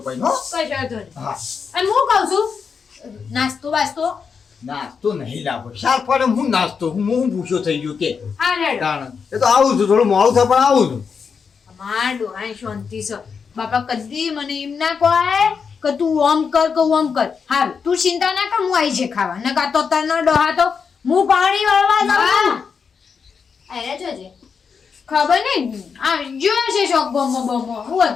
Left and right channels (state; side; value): quieter; right; 6.0 dB